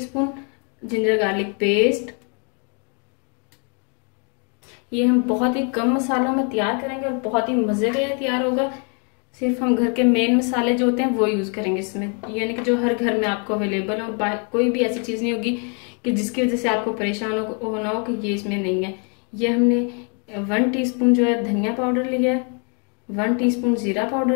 जिंजर गार्लिक पेस्ट। ये हम बहुत ही कम मसालों में तैयार करेंगे और बहुत ही मजे का ये तैयार होगा। सिर्फ हम घर के मेन मसाले जो होते हैं वो यूज करेंगे इसमें, यानी कि जो हर घर में आपको अवेलेबल हो। कोई भी ऐसी चीज नहीं होगी कि जिसकी वजह से आपको परेशान होना हो कि ये इसमें नहीं है। ये हमने 1 टीस्पून जो है धनिया पाउडर लिया है, 1 टीस्पून जीरा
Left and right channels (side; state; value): right; quieter; 38.4 dB